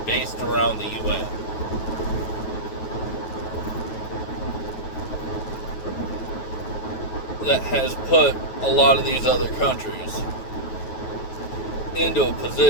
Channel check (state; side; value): late; right; 9.3 ms